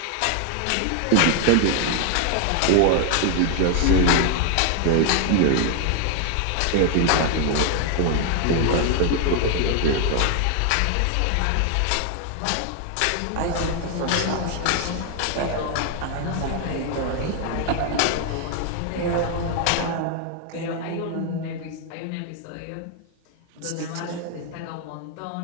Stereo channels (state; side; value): different; both; correlation 0.01